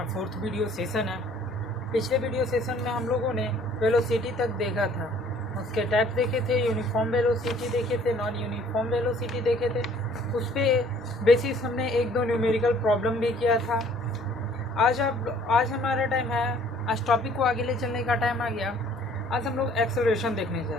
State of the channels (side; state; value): both; normal; correlation 0.56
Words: फोर्थ वीडियो सेशन है। पिछले वीडियो सेशन में हम लोगों ने वेलोसिटी तक देखा था, उसके टाइप देखे थे, यूनिफॉर्म वेलोसिटी देखे थे, नॉन यूनिफॉर्म वेलोसिटी देखे थे। उस पर बेसिस हमने एक दो न्यूमेरिकल प्रॉब्लम भी किया था। आज हमारा टाइम है, आज टॉपिक को आगे ले चलने का टाइम आ गया। आज हम लोग एक्सेलरेशन देखने जा